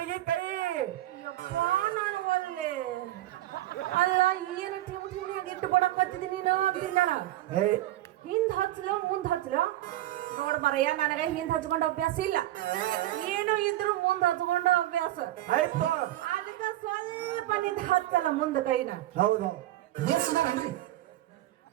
ಕೈ. ಯಪ್ಪ ನಾನು ಒಲ್ಲೆ ಅಲ್ಲ ಏನು ಟಿಮಿಟಿಮಿಯಾಗಿ ಇಟ್ಟು ಬಡಕತ್ತಿದ್ದೀನಿ ನೀನು ಅಂತಿನ್ನಲ್ಲ. ಹಿಂದ್ ಹಚ್ಚಲೋ ಮುಂದ್ ಹಚ್ಚಲೋ ನೋಡ್ ಬರಯ್ಯ, ನನಗ ಹಿಂದ್ ಹಚ್ಕೊಂಡ ಅಭ್ಯಾಸ ಇಲ್ಲ. ಏನು ಇದ್ರು ಮುಂದ್ ಹಚ್ಕೊಂಡ ಅಭ್ಯಾಸ ಆಯ್ತು. ಅದಕ್ಕ ಸ್ವಲ್ಪ ನಿಂದ ಹಚ್ಚಲ್ಲ ಮುಂದ ಕೈನ. ಹೌದು.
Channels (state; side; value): quieter; left; 15.1 dB